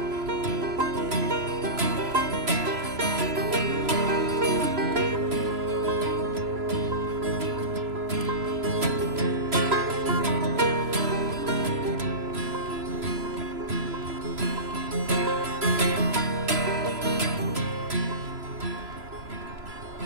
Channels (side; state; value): left; late; 3.0 ms